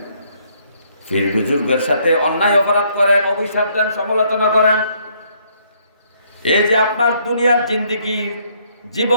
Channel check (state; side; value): inverted; both; correlation -0.68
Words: ফির বুজুর্গের সাথে অন্যায় অপরাধ করেন, অভিশাপ দেন, সমালোচনা করেন। এই যে আপনার দুনিয়ার জিন্দেগি